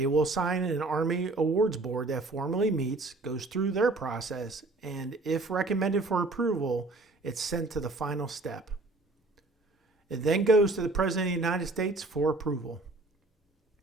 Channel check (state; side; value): quieter; left; 3.2 dB